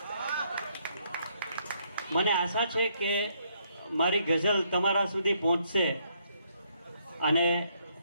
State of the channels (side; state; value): both; inverted; correlation -0.72